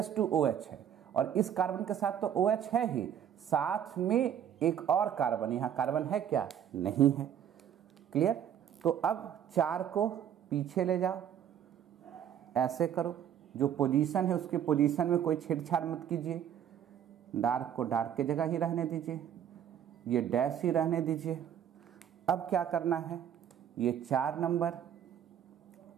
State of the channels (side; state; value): left; quieter; 9.5 dB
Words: है और इस कार्बन के साथ तो OH है ही, साथ में एक और कार्बन, यहाँ कार्बन है क्या? नहीं है। क्लियर? तो अब 4 को पीछे ले जाओ, ऐसे करो, जो पोजीशन है उसके पोजीशन में कोई छेड़छाड़ मत कीजिए, डार्क को डार्क की जगह ही रहने दीजिए, ये डैश ही रहने दीजिए। अब क्या करना है, ये 4 नंबर,